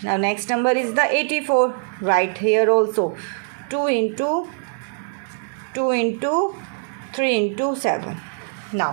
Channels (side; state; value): left; silent; digital silence